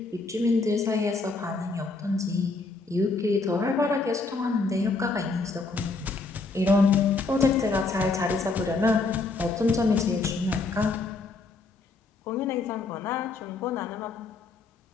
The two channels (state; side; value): quieter; right; 3.8 dB